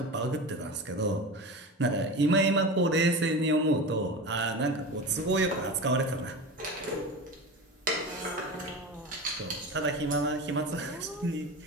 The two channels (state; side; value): normal; both; correlation 0.28